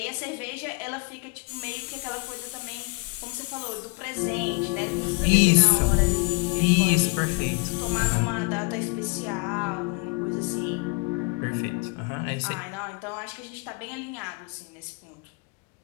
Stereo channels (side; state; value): right; quieter; 30.1 dB